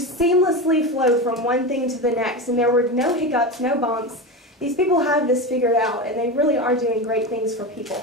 seamlessly flowed from one thing to the next, and there were no hiccups, no bumps. These people have this figured out, and they really are doing great things for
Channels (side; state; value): both; normal; correlation 0.21